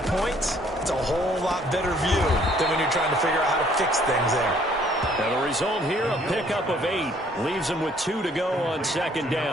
it's a whole lot better view than when you're trying to figure out how to fix things there. And the result here, a pickup of 8. Leaves them with 2 to go on 2nd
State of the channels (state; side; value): normal; both; correlation 0.61